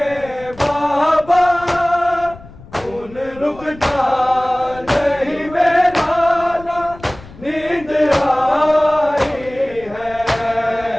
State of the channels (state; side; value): noise; left; rumble, 20 dB below the sound